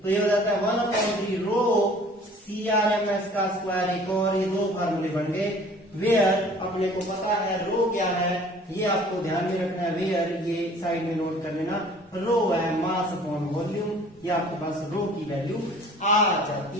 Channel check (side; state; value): both; normal; correlation 0.50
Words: तो ये हो जाता है 1/3 रो CRMS का स्क्वायर। एक और ये दो फार्मूले बन गए। वेयर अपने को पता है रो क्या है, ये आपको ध्यान में रखना है। वेयर ये साइड में नोट कर लेना, रो है मास अपॉन वॉल्यूम, ये आपके पास रो की वैल्यू आ